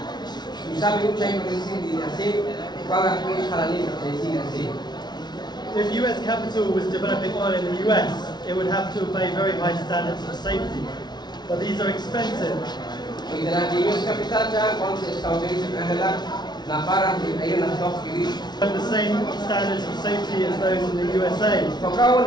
If US capital was developing oil in the US, it would have to obey very high standards of safety. But these are expensive. And the same standards of safety as those in the USA.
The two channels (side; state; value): right; late; 0.20 ms